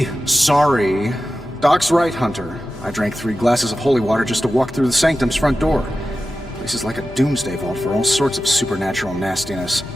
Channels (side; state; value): both; normal; correlation 0.93